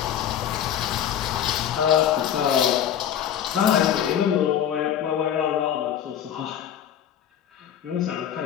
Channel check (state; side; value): quieter; right; 9.8 dB